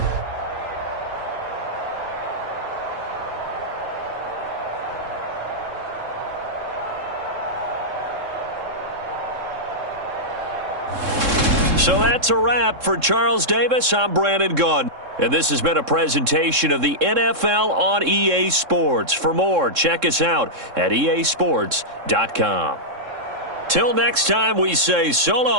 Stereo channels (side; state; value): left; late; 3.7 ms